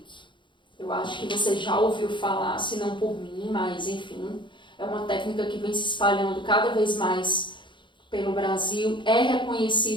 Eu acho que você já ouviu falar, se não por mim, mas enfim, é uma técnica que vem se espalhando cada vez mais pelo Brasil, é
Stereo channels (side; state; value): right; late; 0.23 ms